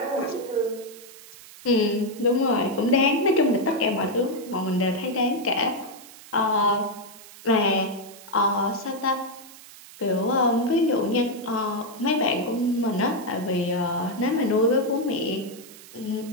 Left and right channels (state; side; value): noise; right; hiss, 19 dB below the sound